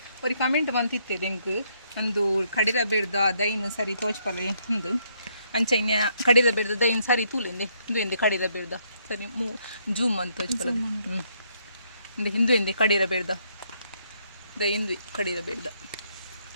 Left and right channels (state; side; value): inverted; both; correlation -0.72